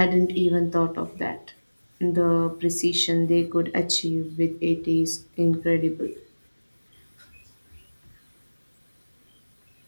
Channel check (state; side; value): inverted; both; correlation -1.00